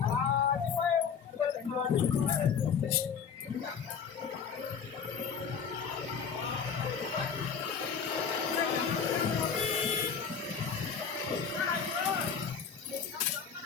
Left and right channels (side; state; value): right; quieter; 6.7 dB